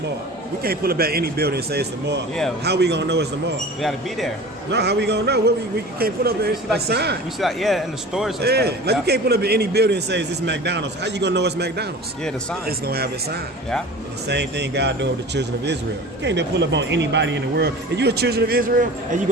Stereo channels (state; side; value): normal; both; correlation 0.38